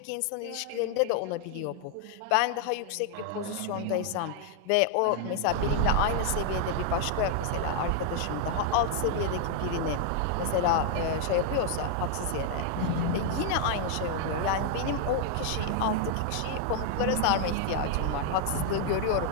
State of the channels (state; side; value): different; both; correlation 0.00